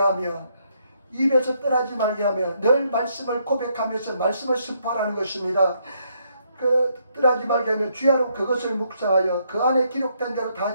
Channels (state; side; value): inverted; both; correlation -0.74